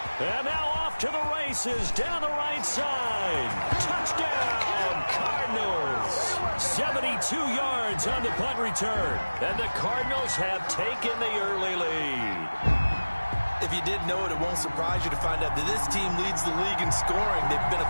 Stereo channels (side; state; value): both; inverted; correlation -1.00